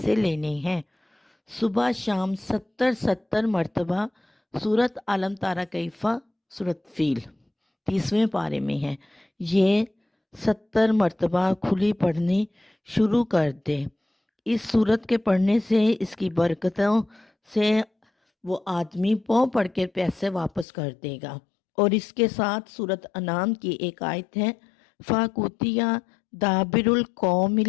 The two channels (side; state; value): right; drops out; at 20.7 s